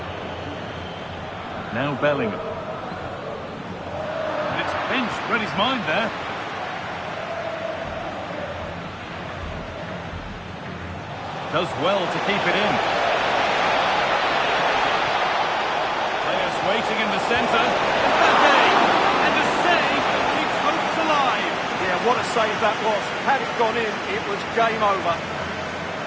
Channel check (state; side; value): identical; both; correlation 1.00